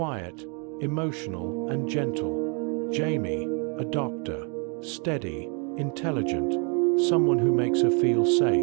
emotional, and gentle. Jamie, a doctor, steady, intelligent, someone who makes her feel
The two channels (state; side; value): quieter; left; 35.9 dB